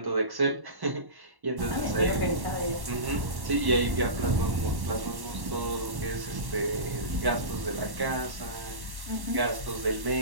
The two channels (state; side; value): late; left; 1.1 ms